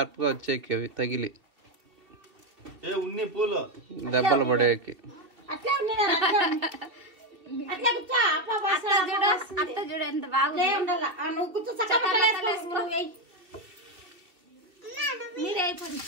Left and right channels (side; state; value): left; late; 3.0 ms